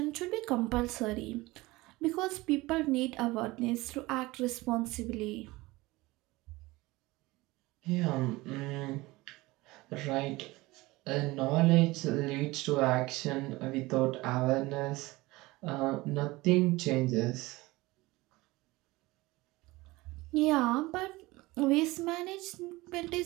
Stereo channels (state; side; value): quieter; left; 20.8 dB